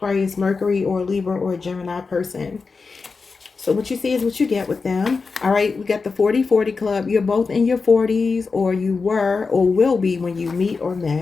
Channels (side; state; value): right; quieter; 4.6 dB